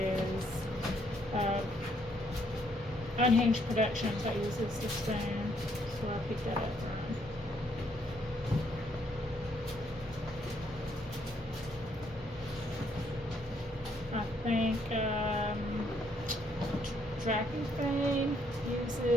Unhinged Productions that uses the spoon. So I picked that up from. I think Tracking Thing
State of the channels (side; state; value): both; normal; correlation 0.70